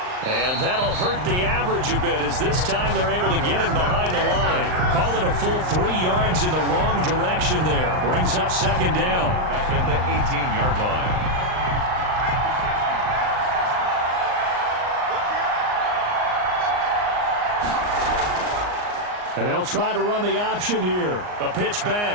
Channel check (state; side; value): late; left; 39 ms